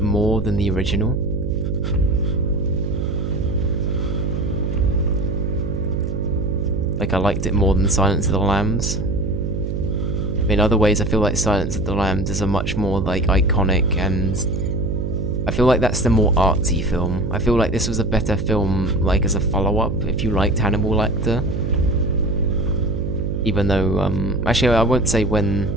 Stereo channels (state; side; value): noise; right; hum, 3 dB below the sound